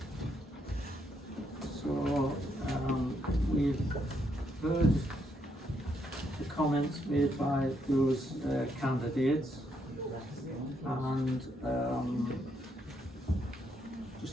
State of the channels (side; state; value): both; normal; correlation 0.76